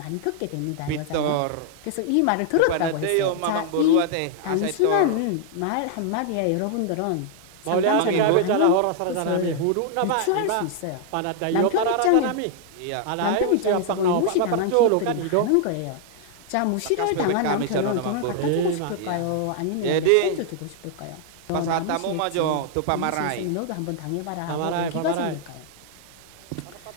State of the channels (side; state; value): both; different; correlation -0.01